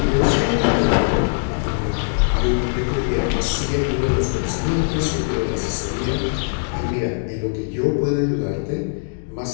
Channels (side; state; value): right; silent; digital silence